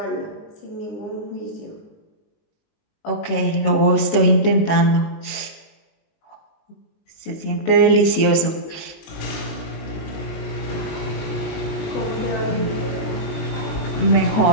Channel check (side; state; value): right; late; 19 ms